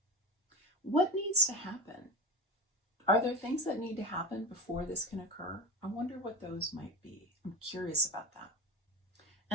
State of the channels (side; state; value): both; normal; correlation 0.26